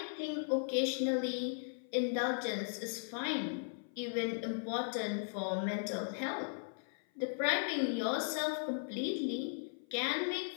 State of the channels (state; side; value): silent; right; 53 dB below the other